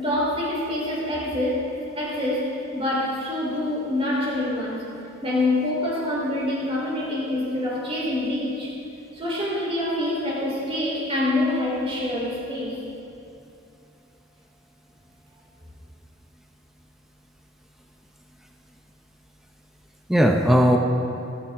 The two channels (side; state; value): both; normal; correlation 0.57